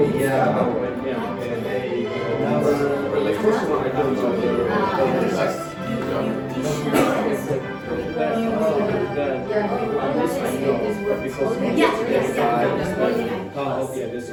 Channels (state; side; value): identical; both; correlation 1.00